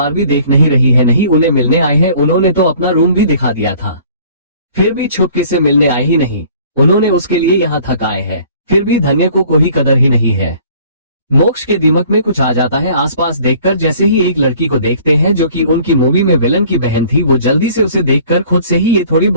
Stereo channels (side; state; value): both; inverted; correlation -0.53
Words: भी देख नहीं रही है, नहीं उन्हें मिलने आए हैं, उन्होंने तो अपना रूम भी दिखा दिया था, फिर भी छुपके से मिलने आए ही नहीं, उन्होंने उसके लिए यहाँ थक आए हैं, फिर भी धन्य को कोई कदर ही नहीं है। मोक्ष के दिमाग में कुछ आ जाता है आसपास देखकर, जैसे ही एक लड़की को देखते हैं जो कि उनकी मूवी में विलन की बहन थी, वो जल्दी से उसे देखकर खुद से ही ये थोड़ी